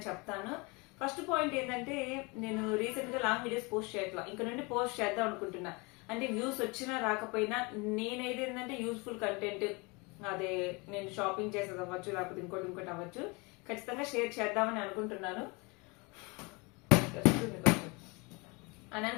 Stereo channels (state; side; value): quieter; right; 28.0 dB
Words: చెప్తాను. ఫస్ట్ పాయింట్ ఏంటంటే, నేను రీసెంట్ గా లాంగ్ వీడియోస్ పోస్ట్ చేయట్లా, ఇంకా నుండి పోస్ట్ చేద్దాం అనుకుంటున్నా. అంటే వ్యూస్ వచ్చినా రాకపోయినా నేనైతే ఏంటంటే యూస్ఫుల్ కంటెంట్, అదే నేను షాపింగ్ చేసేది అవ్వచ్చు, లేకపోతే ఇంకోటి అవ్వచ్చు, ఖచ్చితంగా షేర్ చేద్దామని అనుకుంటున్నాను అని